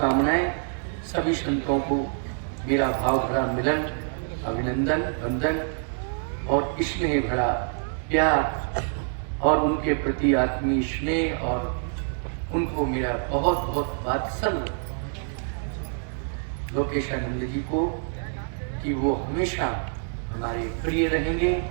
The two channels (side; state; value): left; silent; 61 dB below the other